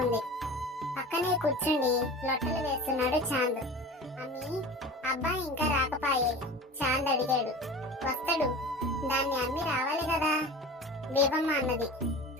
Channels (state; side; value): normal; both; correlation 0.36